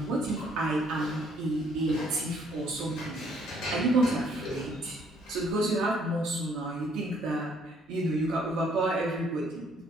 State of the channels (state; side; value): normal; both; correlation 0.64